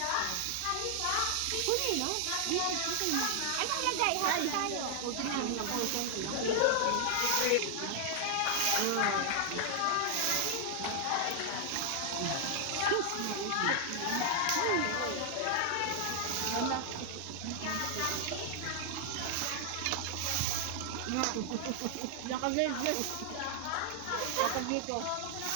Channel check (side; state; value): both; different; correlation 0.00